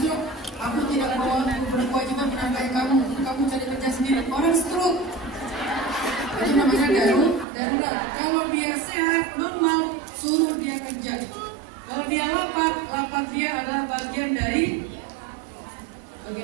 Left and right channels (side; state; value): left; drops out; at 7.5 s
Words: Aku tidak berkewajiban menafkahi kamu. Kamu cari kerja sendiri. Orang stroke. Itu namanya darurat. Kalau dia sehat, normal, suruh dia kerja. Kalau dia lapar dia adalah bagian dari